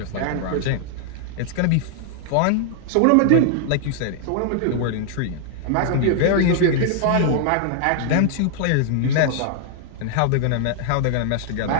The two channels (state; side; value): different; both; correlation -0.01